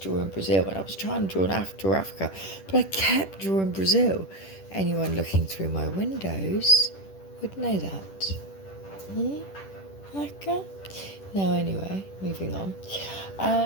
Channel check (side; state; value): right; late; 10 ms